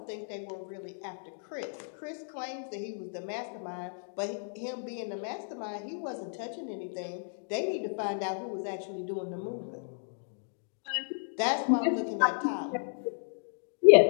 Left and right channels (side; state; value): right; silent; digital silence